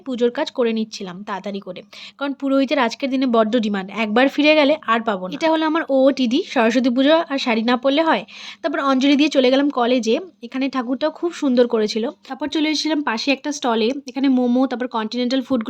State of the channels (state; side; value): identical; both; correlation 1.00